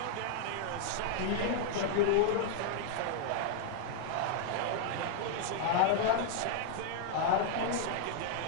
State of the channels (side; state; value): both; different; correlation -0.01